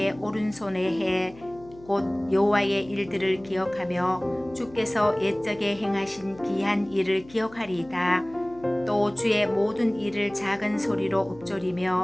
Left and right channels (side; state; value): left; noise; hum, 22 dB below the sound